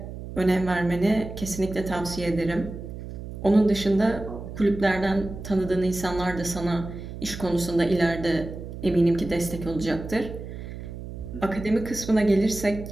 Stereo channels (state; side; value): noise; right; hum, 10 dB below the sound